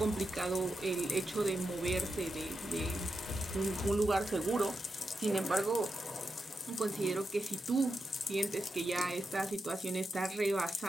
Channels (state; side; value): normal; both; correlation 0.87